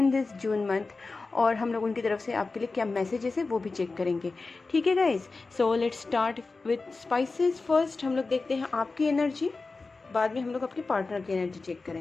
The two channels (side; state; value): right; quieter; 3.8 dB